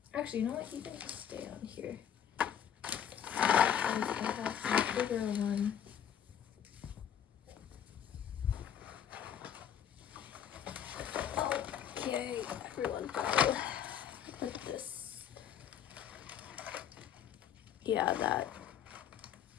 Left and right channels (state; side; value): quieter; right; 9.1 dB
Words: actually, you know what? You can just stay on here. I have a bigger one. Okay, everyone go. Put this. Yeah, that